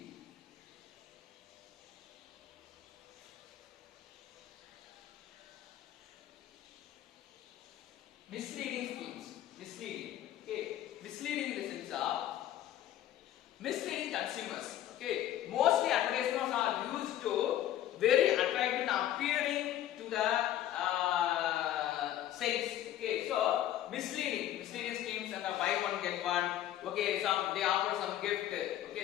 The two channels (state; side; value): quieter; right; 12.3 dB